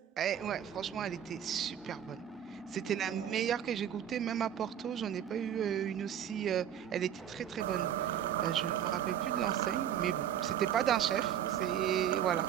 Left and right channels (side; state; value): left; quieter; 9.7 dB